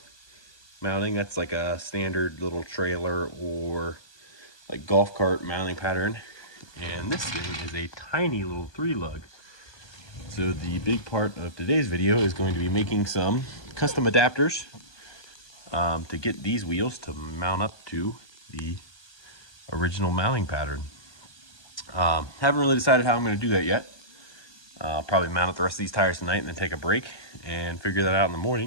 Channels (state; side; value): late; right; 1.2 ms